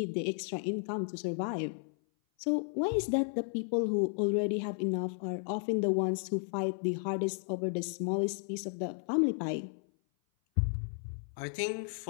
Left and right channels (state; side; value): silent; right; 55 dB below the other